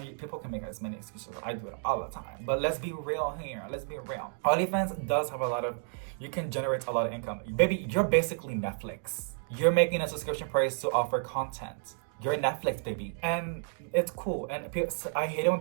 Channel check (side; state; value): left; silent; 57 dB below the other